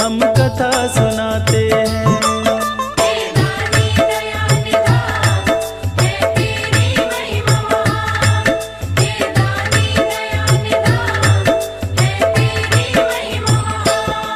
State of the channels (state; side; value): identical; both; correlation 1.00